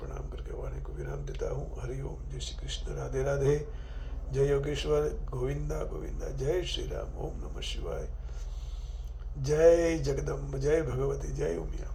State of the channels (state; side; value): identical; both; correlation 1.00